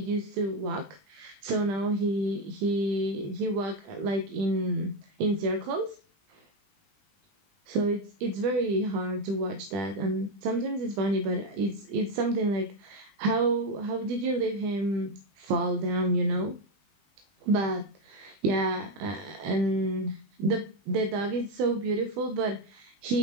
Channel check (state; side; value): late; left; 20 ms